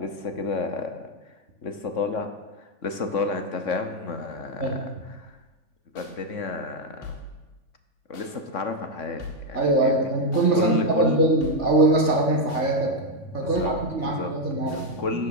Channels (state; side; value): late; right; 3.6 ms